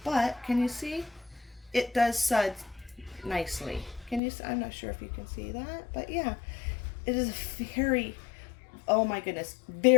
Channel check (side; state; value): right; drops out; at 4.2 s